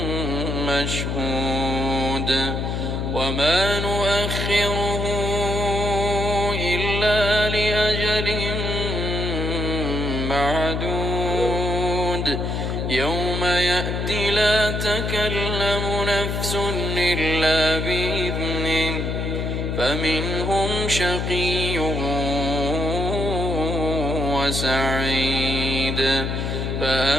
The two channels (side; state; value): left; noise; hum, 1 dB below the sound